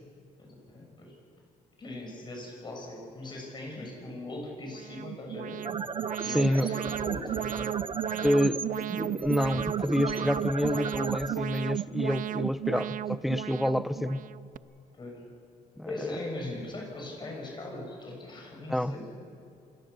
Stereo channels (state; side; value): normal; both; correlation 0.75